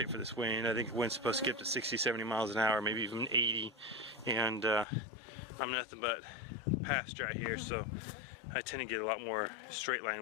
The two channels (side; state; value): right; drops out; at 4.9 s